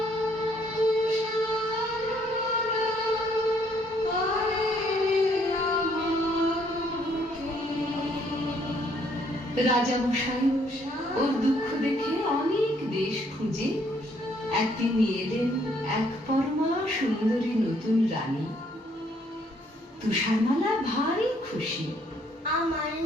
তুষারমালা আয় রে আমার বুকে। রাজা মশাই ওর দুঃখ দেখে অনেক দেশ খুঁজে একদিন নিয়ে এলেন এক পরমা সুন্দরী নতুন রানী। তুষারমালা ভারী খুশি। আমার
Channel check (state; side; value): normal; both; correlation 0.67